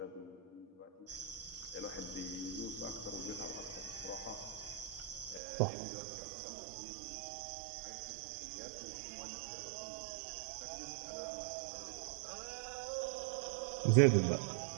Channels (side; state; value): left; drops out; at 5.4 s